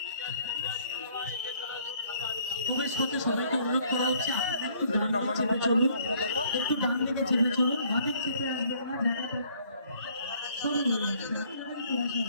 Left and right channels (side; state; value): both; inverted; correlation -0.62